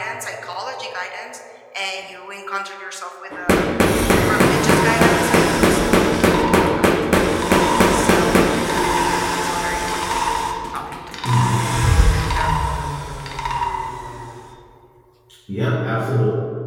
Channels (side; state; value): both; identical; correlation 1.00